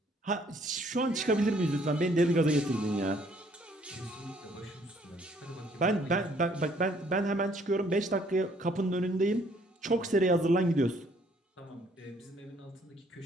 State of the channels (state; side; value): normal; both; correlation 0.63